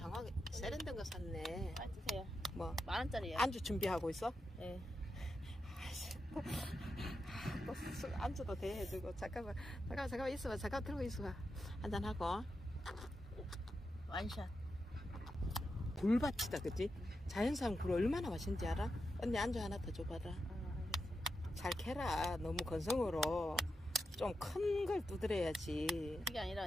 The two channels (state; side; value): normal; both; correlation 0.87